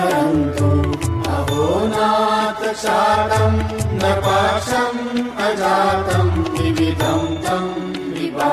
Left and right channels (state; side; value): identical; both; correlation 1.00